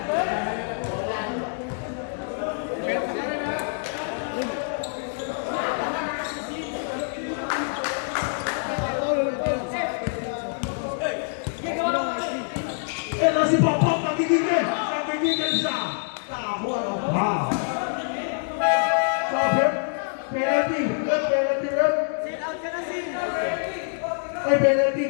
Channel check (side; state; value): right; silent; digital silence